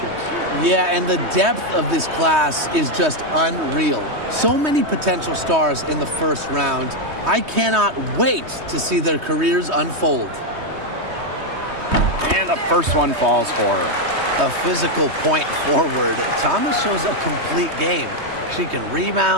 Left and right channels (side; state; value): left; late; 3.2 ms